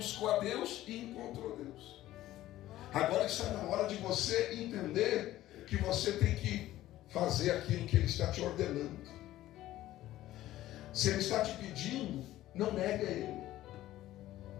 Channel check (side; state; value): right; quieter; 14.8 dB